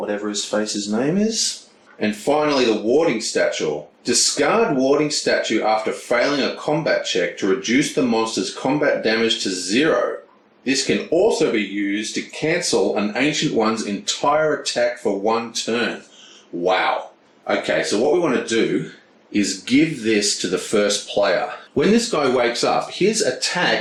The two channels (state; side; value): identical; both; correlation 1.00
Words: his face's name is. And finally, the Warding Statue. Discard Warding Statue after failing a combat check to reduce the monster's combat damage to 0. This can also be used to cancel an Ancient One's entire attack for 1 turn. Wow. Okay, so what we want to do is give this to the first player. When this guy wakes up, his